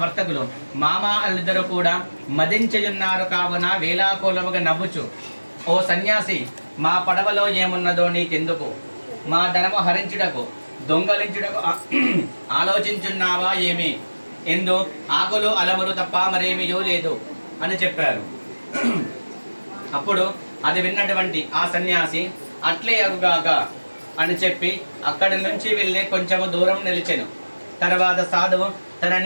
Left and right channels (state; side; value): inverted; both; correlation -1.00